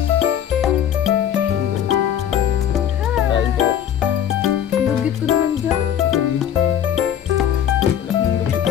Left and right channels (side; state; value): right; quieter; 9.7 dB